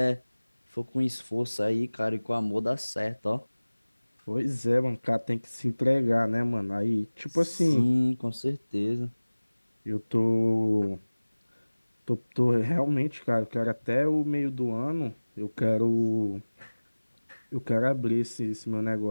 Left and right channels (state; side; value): inverted; both; correlation -1.00